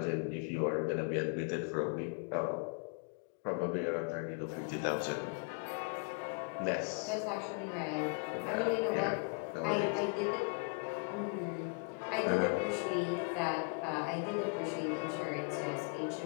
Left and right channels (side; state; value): right; quieter; 35.4 dB